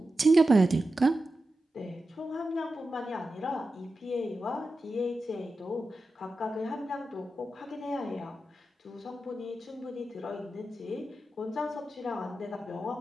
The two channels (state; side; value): normal; both; correlation 0.91